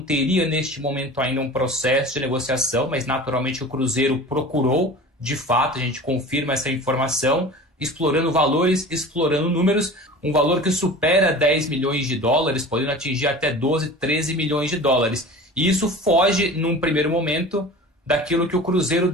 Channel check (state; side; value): normal; both; correlation 0.38